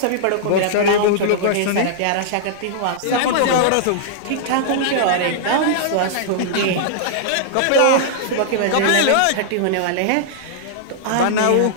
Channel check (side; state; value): both; different; correlation -0.01